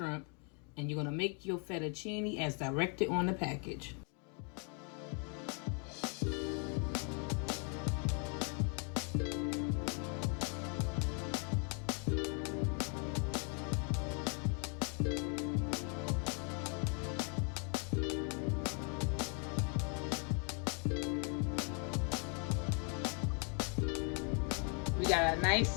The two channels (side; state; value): right; quieter; 38.6 dB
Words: and you're going to make your fettuccine as directed on the package. We got a